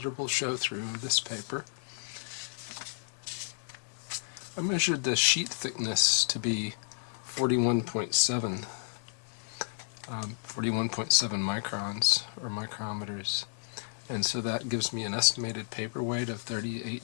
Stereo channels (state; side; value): silent; right; 56 dB below the other